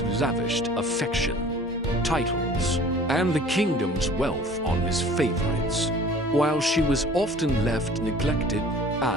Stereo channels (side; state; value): both; normal; correlation 0.48